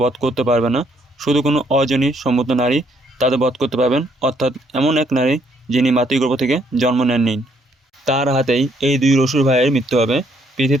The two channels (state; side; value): normal; both; correlation 0.69